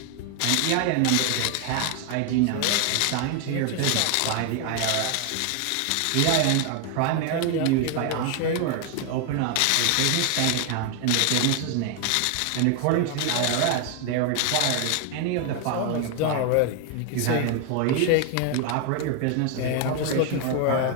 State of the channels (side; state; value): both; different; correlation 0.01